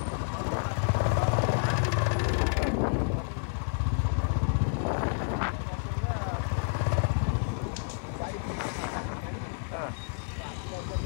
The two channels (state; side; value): silent; right; 58 dB below the other